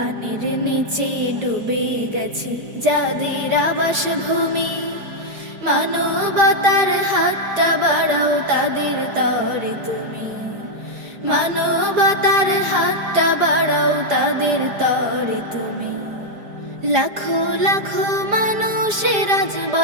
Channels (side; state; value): left; late; 4.9 ms